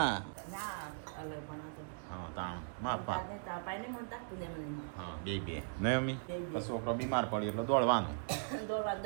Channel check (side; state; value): left; silent; digital silence